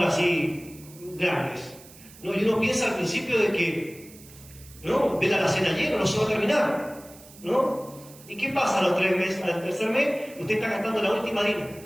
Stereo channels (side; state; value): right; noise; hiss, 21 dB below the sound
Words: así grandes? No, y uno piensa al principio de que, no, ve la alacena llena, no se va a terminar, ¿no? ¿Y qué pasa a los 3 meses? Al tercer mes, usted está gastando la última harina.